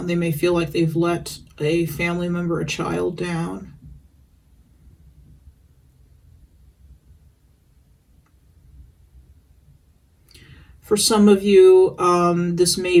They may feel like they've let a family member, a child down. For some of you, this may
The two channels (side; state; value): both; identical; correlation 1.00